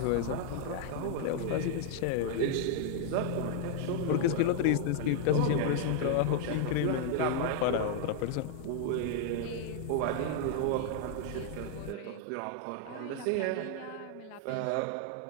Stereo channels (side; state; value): both; different; correlation 0.00